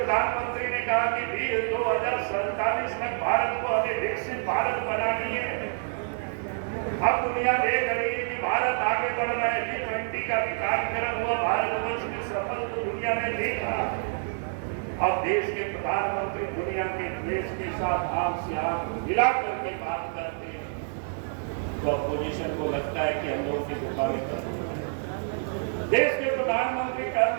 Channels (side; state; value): left; silent; 58 dB below the other